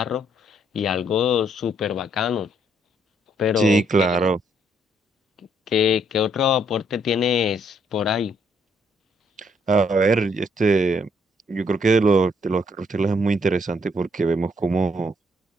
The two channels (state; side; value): normal; both; correlation 0.70